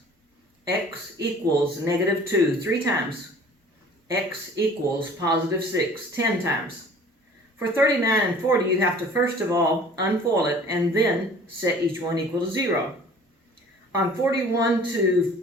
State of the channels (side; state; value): both; normal; correlation 0.48